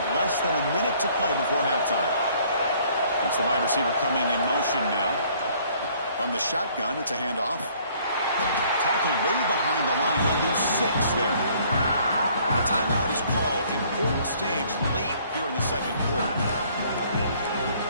less than a minute to play before halftime. That's the wide receiver coming in motion now. From the shotgun, it's a handoff. Tackled way behind the line. He'll lose 6 there. The timeout is called. Important stage late here in the second quarter.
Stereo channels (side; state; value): both; inverted; correlation -0.60